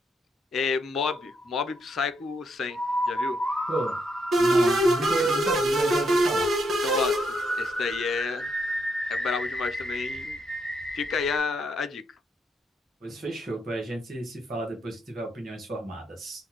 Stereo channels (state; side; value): normal; both; correlation 0.78